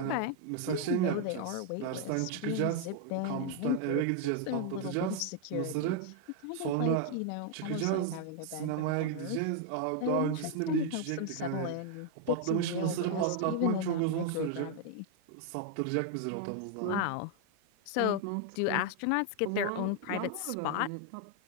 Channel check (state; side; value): different; both; correlation 0.00